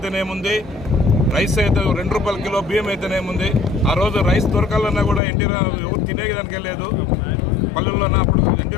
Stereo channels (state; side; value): drops out; right; at 5.2 s